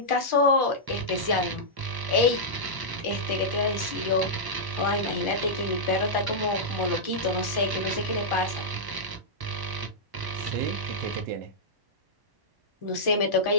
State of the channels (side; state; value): left; late; 1.0 ms